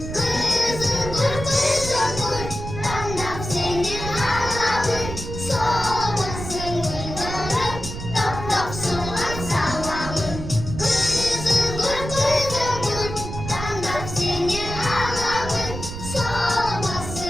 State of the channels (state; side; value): noise; right; rumble, 8 dB below the sound